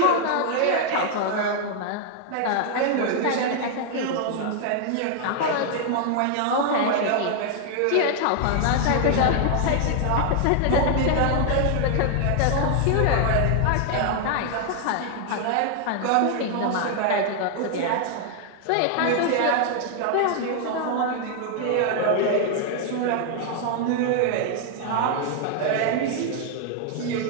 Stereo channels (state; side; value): different; both; correlation 0.00